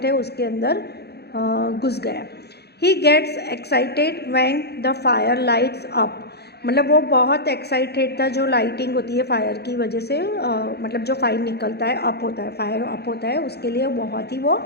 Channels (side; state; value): right; late; 0.48 ms